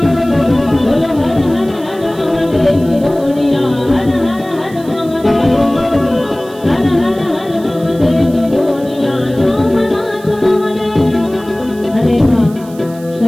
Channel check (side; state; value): right; noise; hiss, 23 dB below the sound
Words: बोलो हर हर हर महादेव गोड़िया हर हर हर महादेव हर हर हर महादेव गोड़िया सोमनाथ महादेव। अरे हाँ